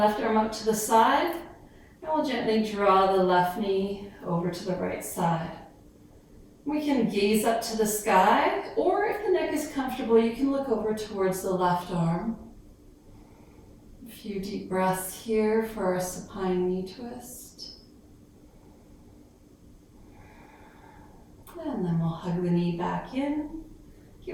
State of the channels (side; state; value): both; identical; correlation 1.00